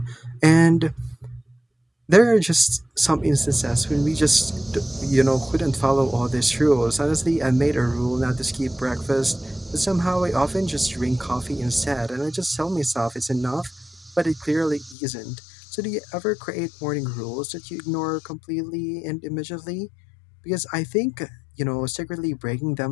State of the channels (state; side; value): drops out; right; at 15.0 s